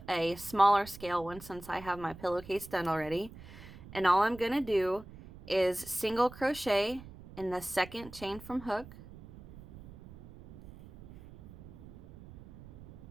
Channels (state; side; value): noise; right; rumble, 17 dB below the sound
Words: a smaller scale one since I have my pillowcase done already. And all I'm going to do is single crochet in the second chain from hook,